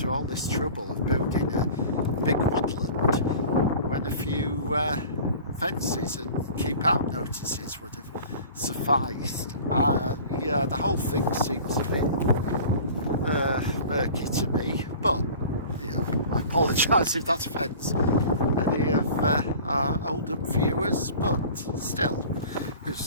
all this trouble of building a big woodland when a few fences and keep out notices would have sufficed? Yeah, the whole thing seems a bit murky to me, but I apologise if that offends any of our Oldham viewers, but still,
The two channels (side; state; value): both; inverted; correlation -0.42